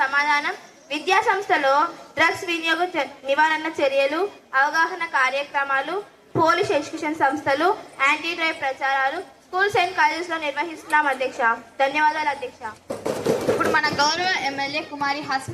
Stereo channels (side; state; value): both; identical; correlation 1.00